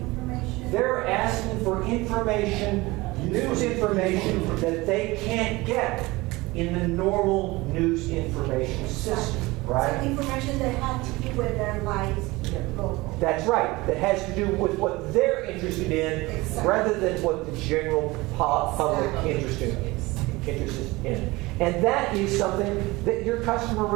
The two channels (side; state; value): left; quieter; 21.6 dB